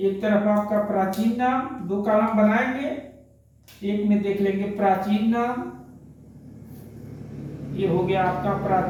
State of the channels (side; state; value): both; identical; correlation 1.00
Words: तरफ आपका प्राचीन नाम, 2 कॉलम बनाएंगे, एक में देख लेंगे प्राचीन नाम। ये हो गया आपका